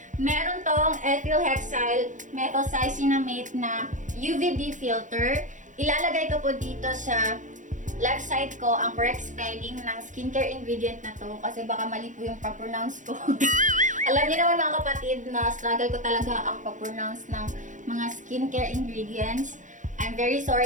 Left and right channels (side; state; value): left; late; 0.36 ms